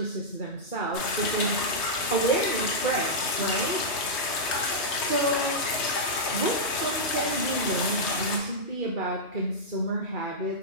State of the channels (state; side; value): late; right; 3.2 ms